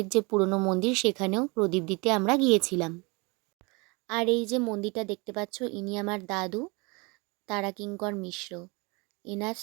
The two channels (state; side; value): quieter; left; 28.5 dB